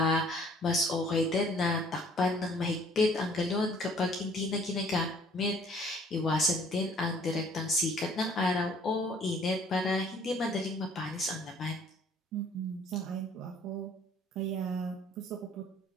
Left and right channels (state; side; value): normal; both; correlation 0.57